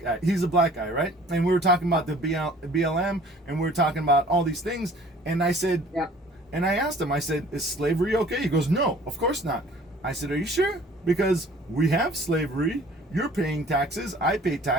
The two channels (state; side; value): normal; both; correlation 0.51